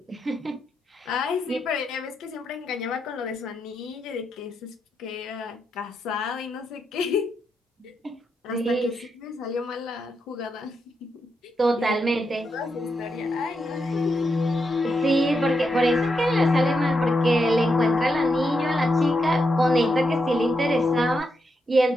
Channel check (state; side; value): normal; both; correlation 0.83